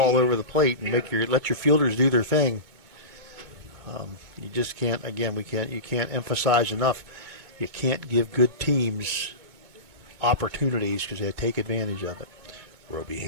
over the plate and let your fielders do their thing. You just can't. Again, you can't emphasize enough. You can't give good teams opportunities because they take advantage of it. Roby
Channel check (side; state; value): left; late; 2.2 ms